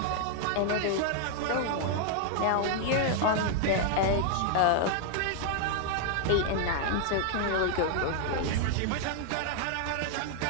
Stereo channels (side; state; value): both; different; correlation 0.00